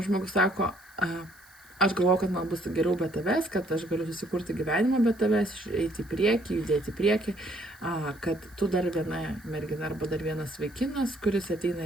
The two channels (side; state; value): right; noise; hiss, 26 dB below the sound